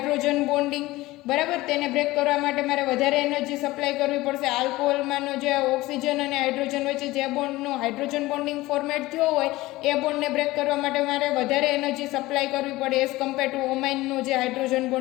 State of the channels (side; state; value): right; quieter; 18.8 dB